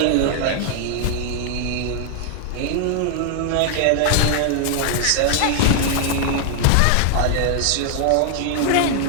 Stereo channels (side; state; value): both; different; correlation 0.00